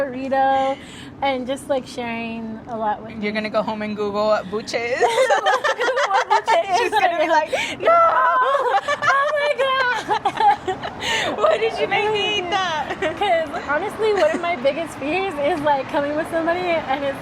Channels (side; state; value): both; identical; correlation 1.00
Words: and just like sharing a lot with me. You're gonna go home and Google what buche is. She's She's gonna be like, no! Oh my god! Why did you make me eat that? Because honestly, one of my biggest fears is like coming with somebody and it's